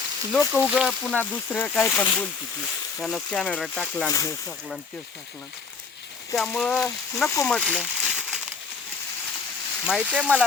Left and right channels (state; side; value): quieter; right; 5.0 dB